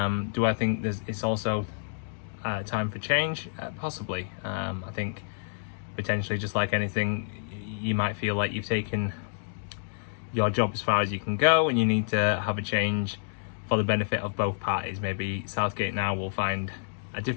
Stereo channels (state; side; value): silent; right; digital silence